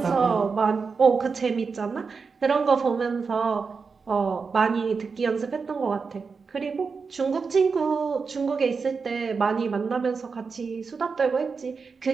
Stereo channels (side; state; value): left; quieter; 5.1 dB